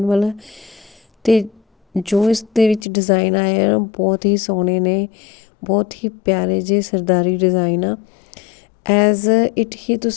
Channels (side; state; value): right; drops out; at 2.9 s